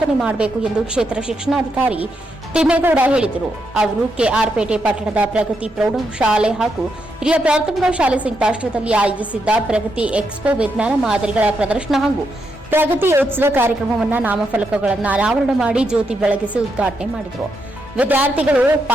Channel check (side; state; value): both; normal; correlation 0.81